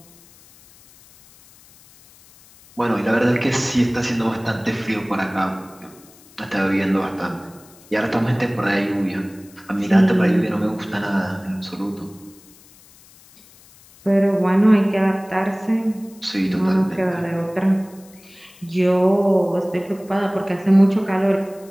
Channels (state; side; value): noise; left; hiss, 26 dB below the sound